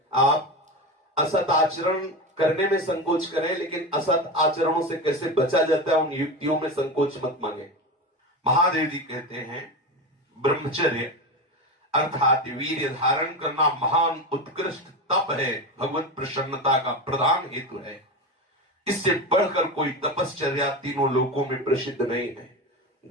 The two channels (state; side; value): normal; both; correlation 0.21